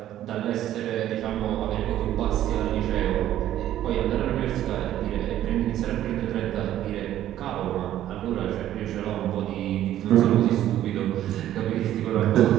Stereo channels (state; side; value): quieter; left; 12.4 dB